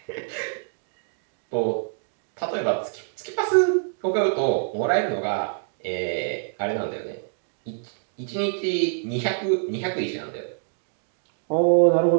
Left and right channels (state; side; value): silent; left; digital silence